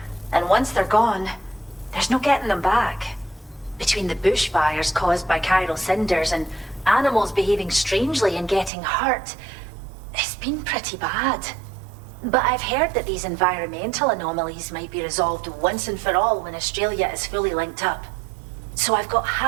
And once they're gone, there's no getting them back. Between the bushfires caused by chiral cinders and animals behaving strangely and getting hurt, it's been pretty bad. But I've heard that these environmental anomalies might be resolved once and for all when Australia is fully linked up. So I've got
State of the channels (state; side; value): drops out; left; at 8.7 s